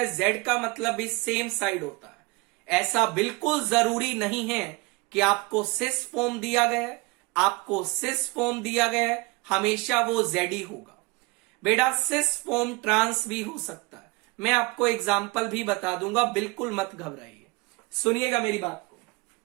जेड का मतलब भी सेम साइड होता है। ऐसा बिल्कुल जरूरी नहीं है कि आपको सिस फॉर्म दिया गया है, आपको सिस फॉर्म दिया गया है हमेशा वो जेड ही होगा। बेटा सिस फॉर्म ट्रांस भी हो सकता है, मैं आपको एग्जाम्पल भी बता दूंगा, बिल्कुल मत घबराइए। सुनिएगा मेरी बात को,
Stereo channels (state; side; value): quieter; left; 25.3 dB